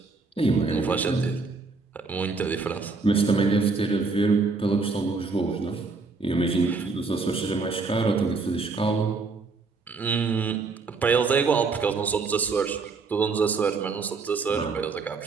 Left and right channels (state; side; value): quieter; left; 4.2 dB